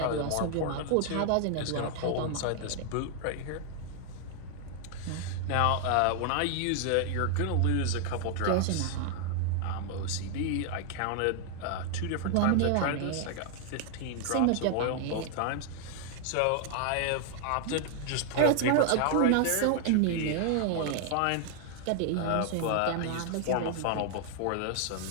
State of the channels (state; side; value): different; both; correlation 0.00